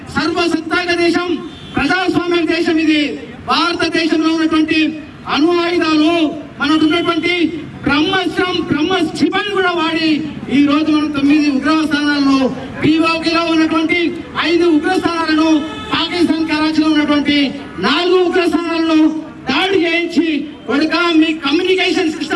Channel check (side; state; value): both; identical; correlation 1.00